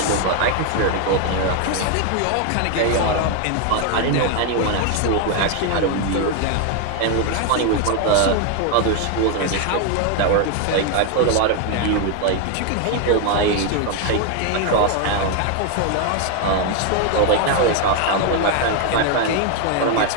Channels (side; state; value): both; different; correlation 0.01